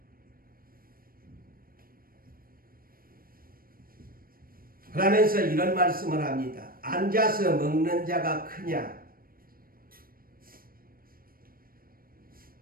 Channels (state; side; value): late; left; 0.42 ms